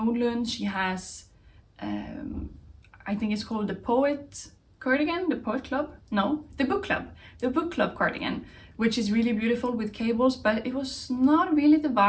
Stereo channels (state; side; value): identical; both; correlation 1.00